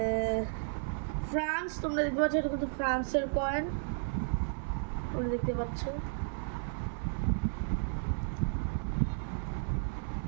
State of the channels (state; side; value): silent; left; 55 dB below the other